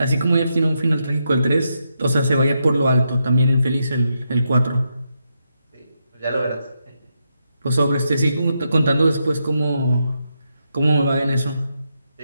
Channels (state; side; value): inverted; both; correlation -0.83